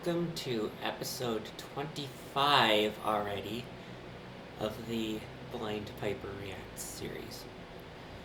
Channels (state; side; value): identical; both; correlation 1.00